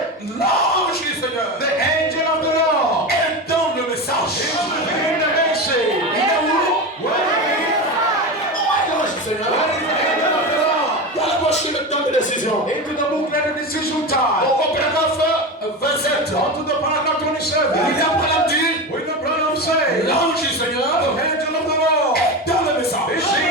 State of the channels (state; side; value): normal; both; correlation 0.22